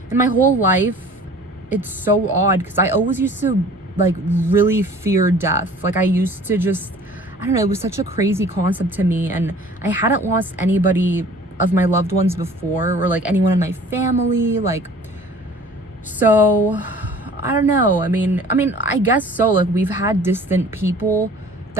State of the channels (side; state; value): both; normal; correlation 0.48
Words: and my whole life, it's so odd because I always used to like really fear death. Like, I used to just, I don't know, it was such a crazy concept to me, and I hadn't lost anybody of my loved ones before, or like anyone in my family, like, so I don't know. I mean I guess so. Like, we've had distant people